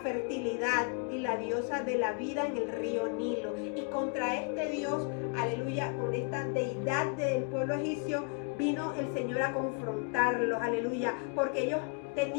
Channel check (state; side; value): quieter; right; 37.3 dB